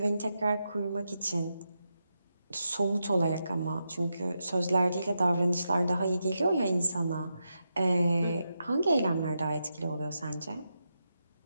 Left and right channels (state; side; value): inverted; both; correlation -0.86